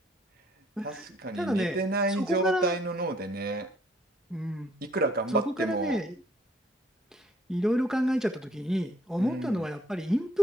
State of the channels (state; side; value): normal; both; correlation 0.63